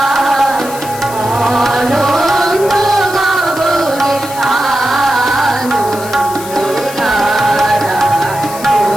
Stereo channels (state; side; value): noise; left; hiss, 13 dB below the sound